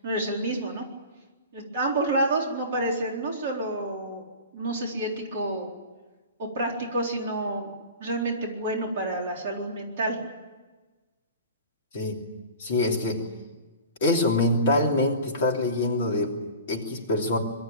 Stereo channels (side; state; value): both; inverted; correlation -0.37